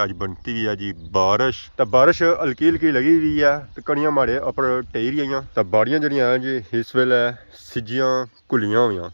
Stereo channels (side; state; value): both; inverted; correlation -1.00